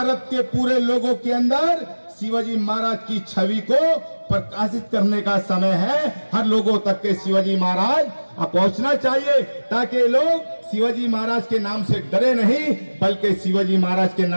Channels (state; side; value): inverted; both; correlation -1.00